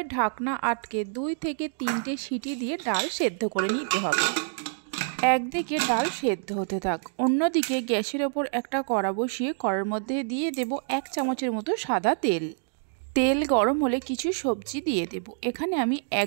ঢাকনা আটকে 2 থেকে 3টে সিটি দিয়ে ডাল সেদ্ধ করে নিতে হবে। একদিকে ডাল সেদ্ধ হতে থাক, অন্যদিকে গ্যাসের ওপর একটা কড়া বসিয়ে কড়ার মধ্যে দিয়ে দেব 1 চামচের মতো সাদা তেল। তেল গরম হলে কিছু সবজি দিয়ে দেব। এখানে আমি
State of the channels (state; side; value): silent; left; digital silence